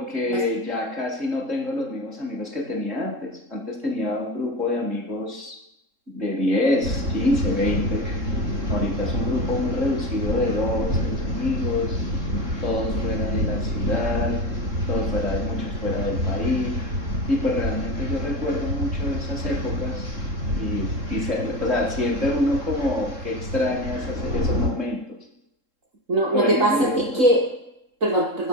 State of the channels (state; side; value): late; left; 3.7 ms